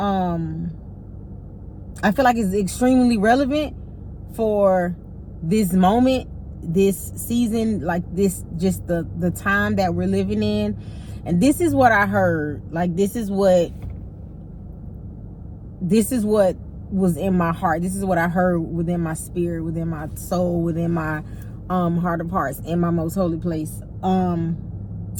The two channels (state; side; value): identical; both; correlation 1.00